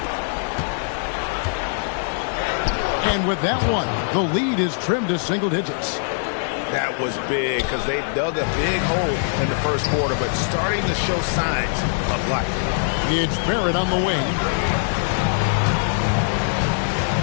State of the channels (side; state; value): right; silent; 64 dB below the other